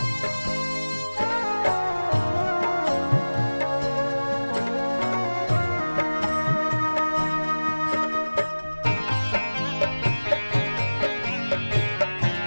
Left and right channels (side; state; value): both; inverted; correlation -1.00